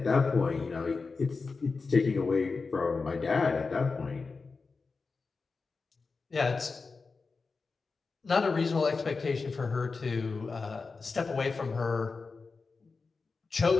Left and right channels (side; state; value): right; quieter; 4.4 dB